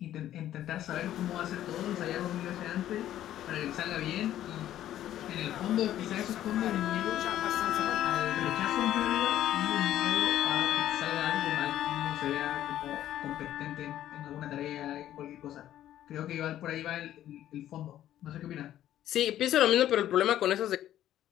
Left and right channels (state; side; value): quieter; right; 12.3 dB